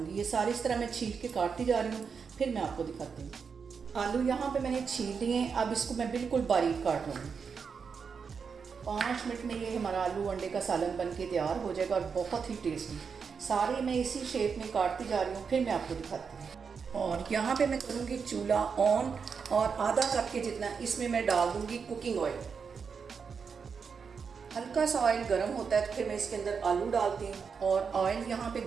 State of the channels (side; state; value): left; quieter; 5.9 dB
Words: ये सारी इस तरह मैं छील के काटती जा रही हूँ, फिर मैं आपको दिखाती हूँ। आलू यहाँ पे मैंने छील लिए हैं, अब इसको मैं बिल्कुल बारीक काट लूँगी। 5 मिनट में ये हमारा आलू अंडे का सालन बन के तैयार हो जाएगा और बहुत ही टेस्टी। सारे मैं इसी शेप में काटती जा रही हूँ, फिर मैं आपको दिखाती हूँ। और यहाँ पे मैं करूँगी चूल्हा ऑन और आधा कप के जितना इसमें मैं डाल दूँगी कुकिंग ऑयल। हल्का सा ऑयल गर्म होता है तो फिर मैं इसके अंदर आलू डालती हूँ। और ऑयल यहाँ पे